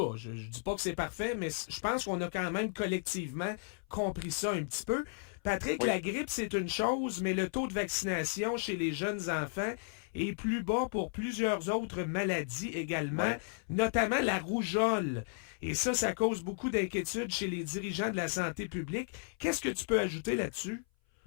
je dis pas que c'est parfait, mais je pense qu'on a quand même collectivement compris ça un petit peu. Patrick, la grippe, c'est une chose, mais le taux de vaccination chez les jeunes enfants est plus bas pour plusieurs autres maladies également, notamment la rougeole. Et ça cause beaucoup d'inquiétudes chez les dirigeants de la santé publique. Qu'est-ce que tu peux ajouter là-dessus?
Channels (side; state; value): right; silent; 55 dB below the other